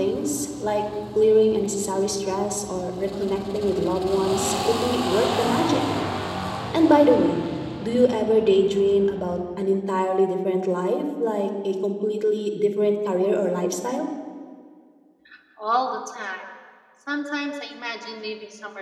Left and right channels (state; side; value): identical; both; correlation 1.00